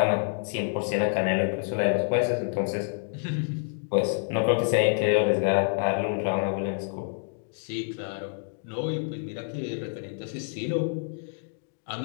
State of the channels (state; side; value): silent; right; digital silence